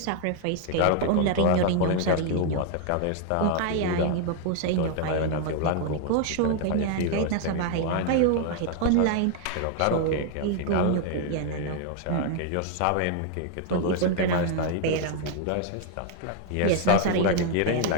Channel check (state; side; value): different; both; correlation 0.00